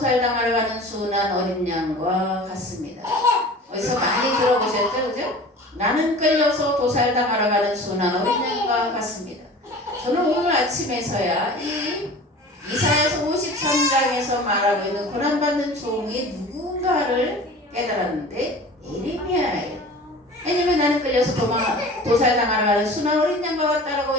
가는 순한 어린 양과 같습니다. 어디서 많이 들어보셨죠? 그죠? 나는 끌려서 도살당하러 가는 순한 어린 양과 같습니다. 저는 오늘 아침에서야 이 이사야서 53장에서 말하고 있는 고난받는 종이 누군가를 깨달았는데 예레미야예요. 왜냐면 나는 끌려서 도살당하러 가는 순한 어린 양과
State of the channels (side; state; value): both; normal; correlation 0.40